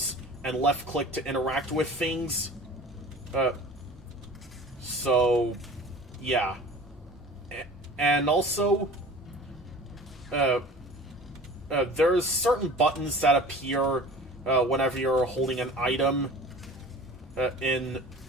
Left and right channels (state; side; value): normal; both; correlation 0.42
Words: and left-click to interact with things. So, yeah. And also, there's certain buttons that appear whenever you're holding an item in